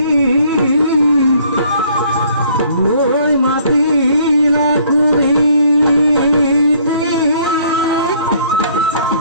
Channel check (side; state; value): both; inverted; correlation -0.61